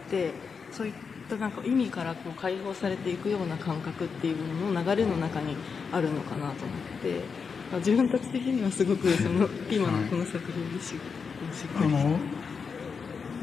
て、そういったなんか意味からこう解放されていくような感覚っていうものの流れの中にあるのかなと思って、自分たち的にはすごくその今のこの作品でしっくりき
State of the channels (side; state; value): right; quieter; 5.6 dB